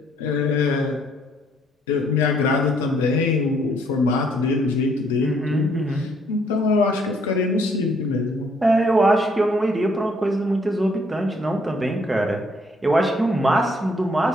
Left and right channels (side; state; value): both; normal; correlation 0.67